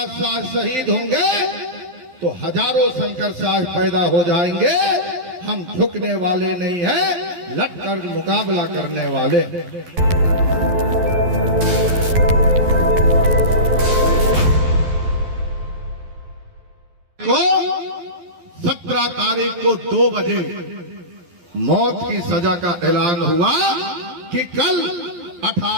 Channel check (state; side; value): late; left; 12 ms